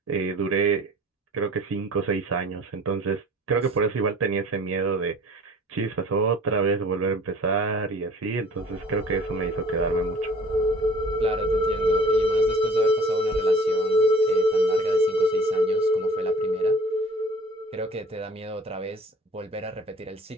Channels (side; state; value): both; normal; correlation 0.48